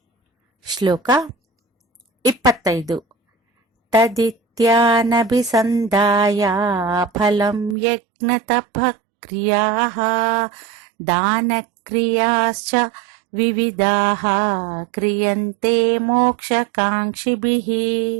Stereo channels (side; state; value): left; drops out; at 7.8 s